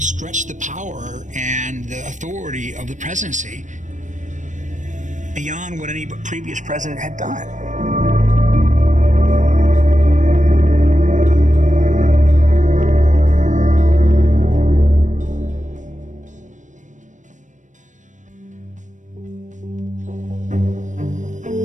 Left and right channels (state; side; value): late; left; 0.36 ms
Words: the power and the authority of the presidency beyond what any previous president had done.